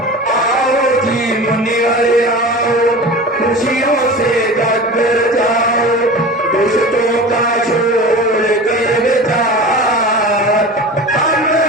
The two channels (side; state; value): both; normal; correlation 0.34